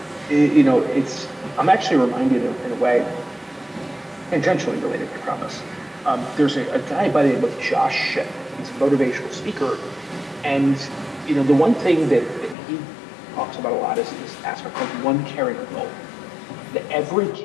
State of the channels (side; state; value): right; drops out; at 12.6 s